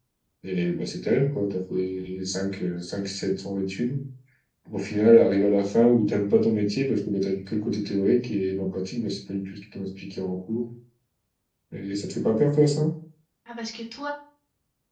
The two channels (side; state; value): both; identical; correlation 1.00